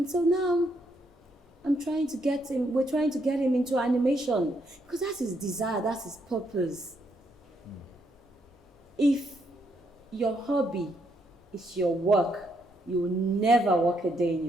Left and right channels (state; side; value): normal; both; correlation 0.75